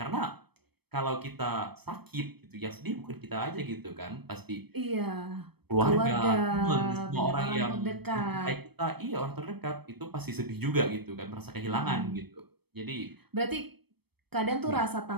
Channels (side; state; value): left; late; 0.97 ms